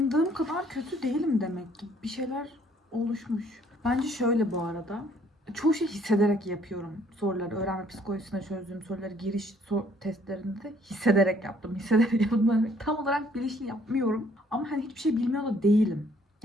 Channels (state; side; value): normal; both; correlation 0.62